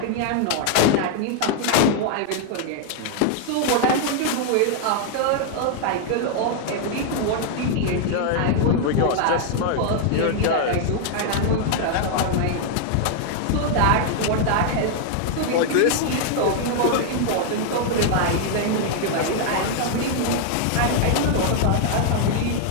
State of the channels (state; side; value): different; both; correlation 0.00